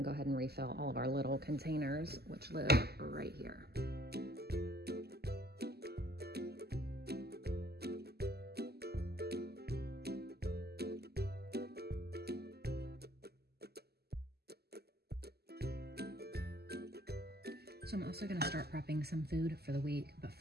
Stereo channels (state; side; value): late; left; 0.46 ms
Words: go ahead and refill all of our little containers, which live right here. So I'm also gonna start prepping some food for the week, but